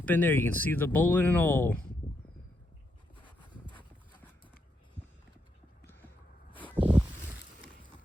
in there. You can see the bullet and all.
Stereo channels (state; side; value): normal; both; correlation 0.80